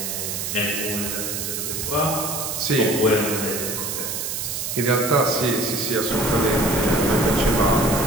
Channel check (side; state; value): right; noise; hiss, 3 dB below the sound